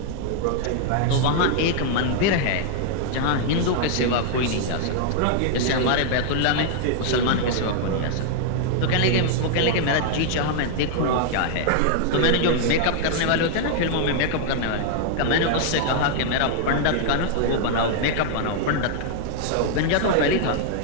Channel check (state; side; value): different; both; correlation -0.01